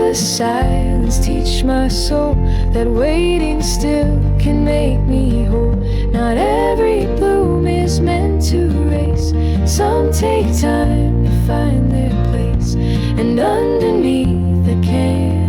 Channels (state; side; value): identical; both; correlation 1.00